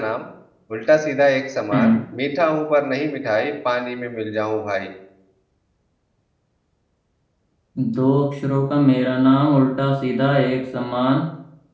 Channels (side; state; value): both; identical; correlation 1.00